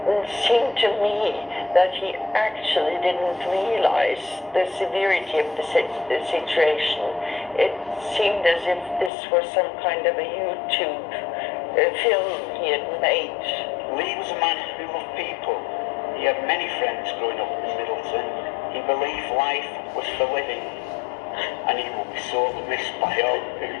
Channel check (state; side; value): drops out; right; at 9.1 s